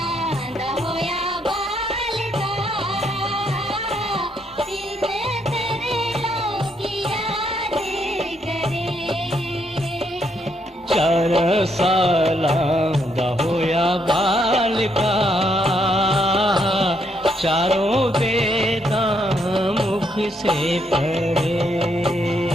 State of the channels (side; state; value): both; normal; correlation 0.74